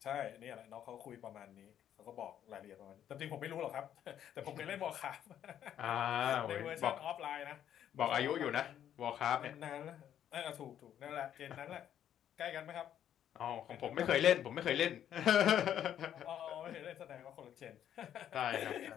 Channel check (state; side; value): quieter; right; 10.2 dB